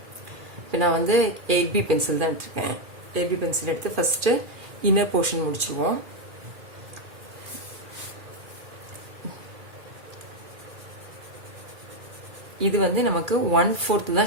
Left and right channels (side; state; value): left; late; 2.4 ms